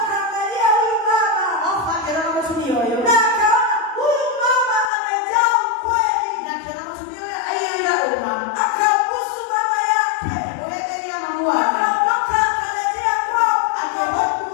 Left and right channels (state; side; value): drops out; right; at 4.9 s